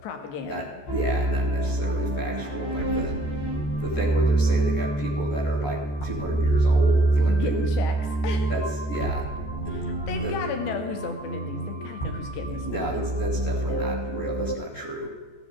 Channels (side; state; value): right; late; 14 ms